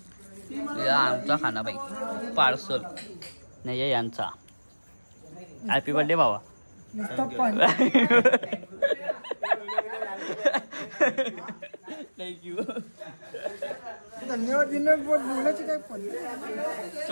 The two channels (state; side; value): inverted; both; correlation -1.00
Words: आमचा खाना बाई पार्सल नाही यांचा. हॅपी बर्थडे भावा. थँक्यू. धन्यवाद. बोलायची काय पण